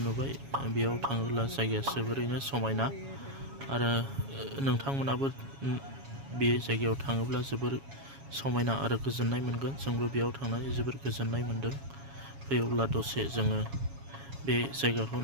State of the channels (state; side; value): late; left; 7.2 ms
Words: नुबाय बेयाव थाङोब्ला जायगाया जोबोरैनो समायना आरो नोंथांमोनाबो बे जायगायाव थाङोब्ला जोबोर समायना आरो गोजोननाय मोनगोन जोंबो बेयाव थांनानै जोबोर गोजोननाय मोनदों फैयोब्ला दसे जोङो बे जायगाखौ